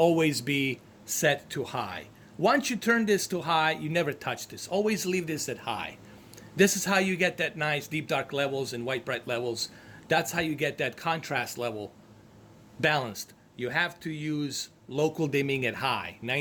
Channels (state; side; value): identical; both; correlation 1.00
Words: be set to high. Once you turn this to high, you never touch this. Always leave this at high. This is how you get that nice deep dark levels and white bright levels. That's how you get that contrast level balanced. You have to use local dimming at high,